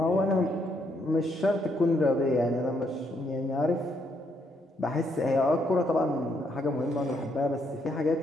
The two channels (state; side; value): normal; both; correlation 0.74